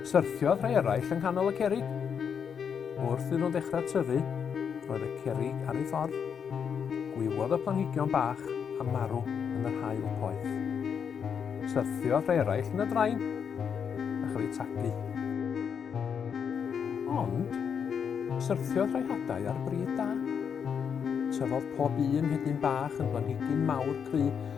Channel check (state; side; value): quieter; right; 7.2 dB